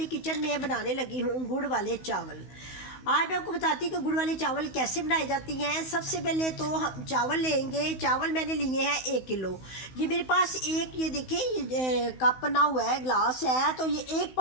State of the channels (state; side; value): late; right; 16 ms